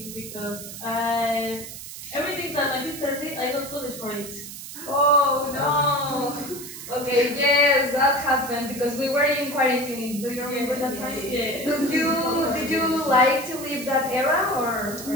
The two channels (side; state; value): right; noise; hiss, 11 dB below the sound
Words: because everything that my sister did, I got punished for it. Oh no. Okay, yes, that happened because we were in quarantine. Do you remember that time? Yeah. Did you like to live that era or